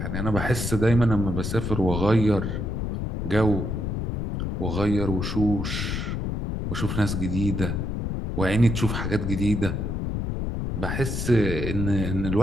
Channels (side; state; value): left; noise; rumble, 2 dB below the sound